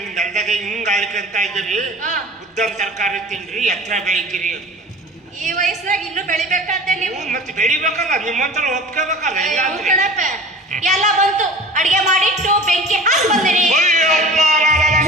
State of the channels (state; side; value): normal; both; correlation 0.39